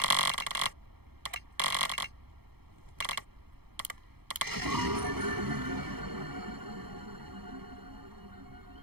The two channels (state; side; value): late; left; 0.96 ms